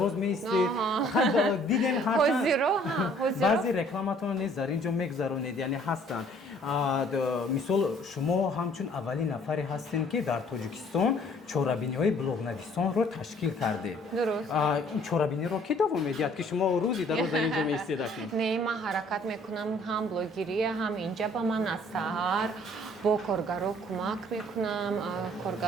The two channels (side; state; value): both; normal; correlation 0.58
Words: меистед. Дидем баъзе рекламатон низ дар ин ҷо мегузаронед, яъне ҳастанд. мисол шумо ҳамчун аввалин нафаре ҳастем ки дар Тоҷикистон чорабиниҳои блогнависонро ташкил кардед. Дуруст. ин чорабиниро ки давом медиҳад ки шумо рӯзи дароз дар ин ҷо меистед? Не, ман ҳаракат мекунам, ҳам блогерия, ҳам инҷа ба ман аз саҳар бо коргаро кӯмак мекунам.